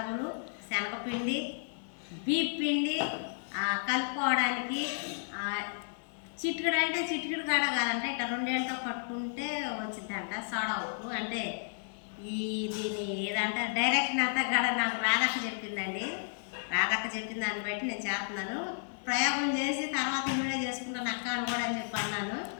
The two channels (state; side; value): silent; right; 56 dB below the other